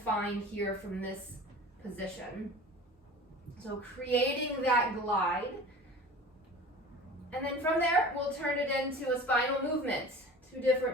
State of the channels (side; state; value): both; normal; correlation 0.39